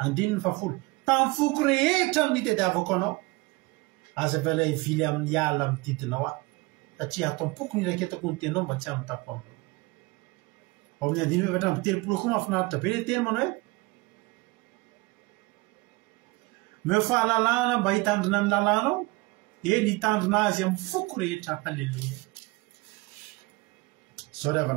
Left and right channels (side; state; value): left; quieter; 23.7 dB